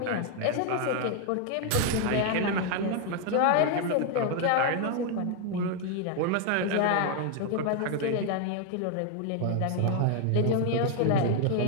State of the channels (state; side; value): different; both; correlation 0.00